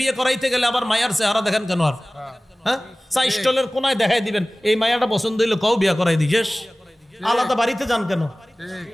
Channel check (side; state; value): both; normal; correlation 0.98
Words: করাইতে গেলে আবার মায়ার চেহারা দেখেন কেন? আর হ্যাঁ, চা স্টলের কোনায় দেখাই দিবেন এই মায়াটা পছন্দ হইলে কও বিয়ে করাই দিয়েস, আলাদা বাড়িতে যান কেন?